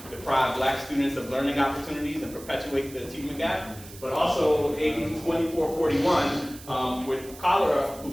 deprive black students of learning opportunities and perpetuate the achievement gap. But also AB 2441 with Cholera, who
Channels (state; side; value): noise; right; hiss, 18 dB below the sound